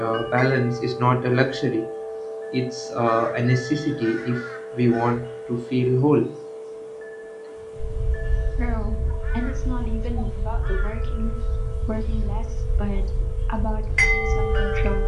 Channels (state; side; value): identical; both; correlation 1.00